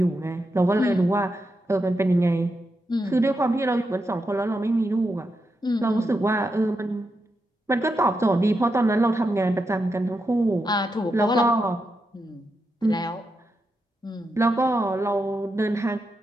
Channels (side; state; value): both; normal; correlation 0.85